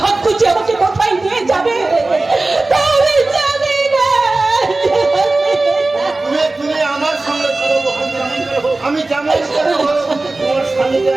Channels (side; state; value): left; quieter; 3.1 dB